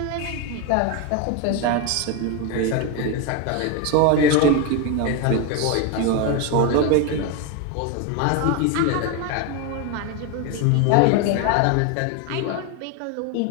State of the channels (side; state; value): both; different; correlation 0.02